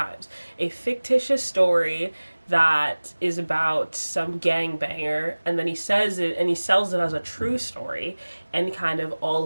a fictitious story that is about some gangbanger, and then he says it and he sells it as a true story, and kind of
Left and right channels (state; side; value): inverted; both; correlation -1.00